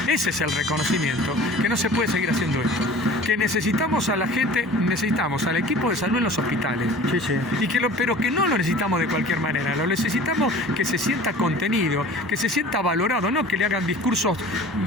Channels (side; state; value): both; normal; correlation 0.43